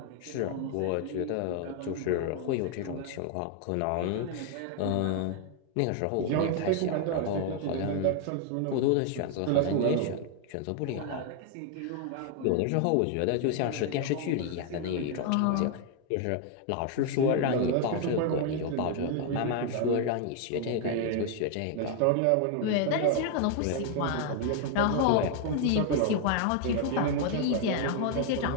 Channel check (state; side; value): different; both; correlation 0.00